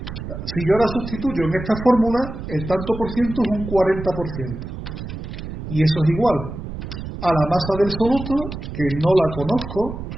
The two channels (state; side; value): noise; right; rumble, 8 dB below the sound